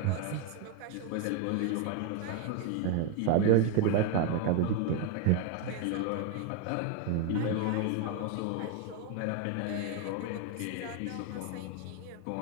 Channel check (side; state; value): both; different; correlation 0.01